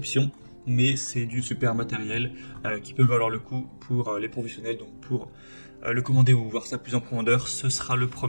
mais c'est du super matériel qui peut valoir le coup pour les professionnels. Donc pour le commander ou voir ça plus en profondeur, ce sera le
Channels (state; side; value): inverted; both; correlation -1.00